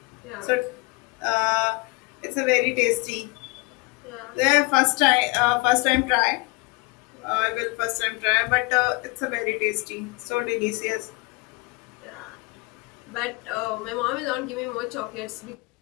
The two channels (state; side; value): quieter; right; 26.6 dB